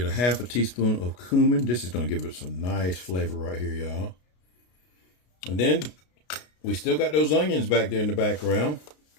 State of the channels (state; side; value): late; right; 33 ms